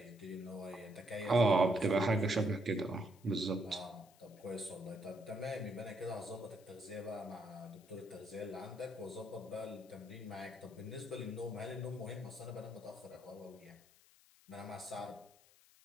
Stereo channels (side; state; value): left; noise; hiss, 26 dB below the sound